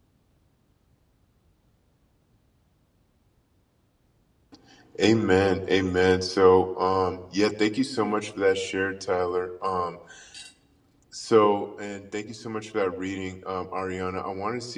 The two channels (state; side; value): identical; both; correlation 1.00